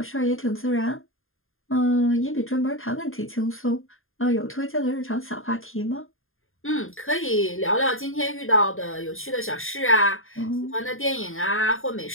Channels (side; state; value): right; late; 0.60 ms